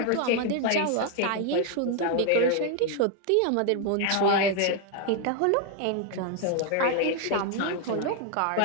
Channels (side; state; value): both; different; correlation 0.01